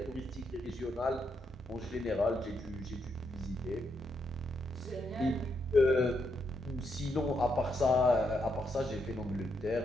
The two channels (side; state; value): both; normal; correlation 0.79